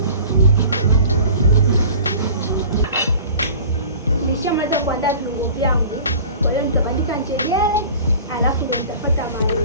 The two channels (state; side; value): inverted; both; correlation -0.42